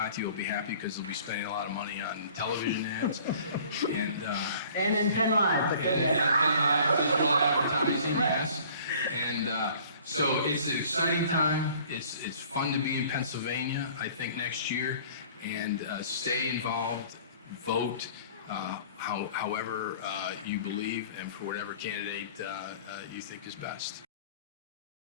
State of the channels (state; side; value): inverted; both; correlation -0.50